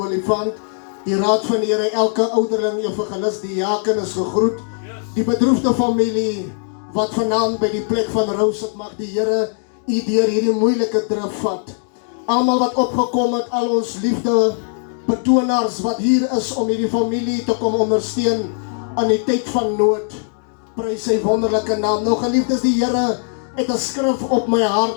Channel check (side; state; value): right; silent; 58 dB below the other